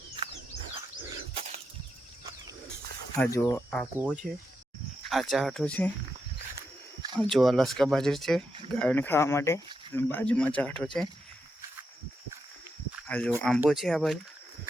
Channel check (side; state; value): both; normal; correlation 0.85